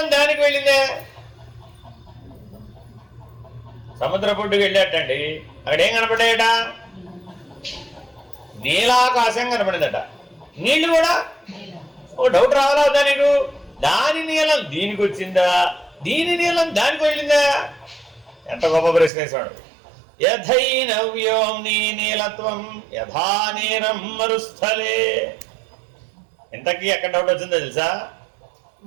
దానికి వెళ్ళిందా? సముద్ర పొడ్డుకు వెళ్ళేటండి, అక్కడ ఏం కనపడ్డాయట? నీలాకాశం కనపడిందట. నీళ్లు కూడా ఓ డౌట్ రావాలా వద్దా నీకు? దాని నీలం దీనికి వచ్చిందా, దీని నీలం దానికి వెళ్ళిందా? ఎంత గొప్ప ప్రశ్న వేసాడు. యథైనవ్యోమ్ని నీలత్వం యథా నీరం మరుస్థలే. ఇంతకీ ఎక్కడ డౌట్ వచ్చిందో తెలుసా?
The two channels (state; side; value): drops out; left; at 19.1 s